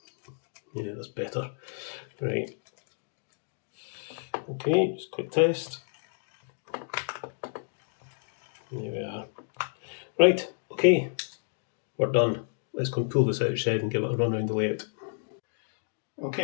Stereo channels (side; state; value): right; silent; digital silence